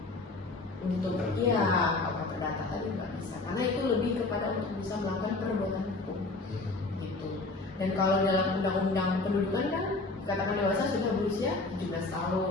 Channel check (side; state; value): right; quieter; 3.3 dB